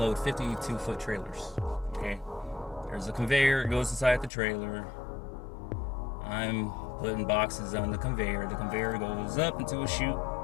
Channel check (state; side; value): drops out; right; at 4.3 s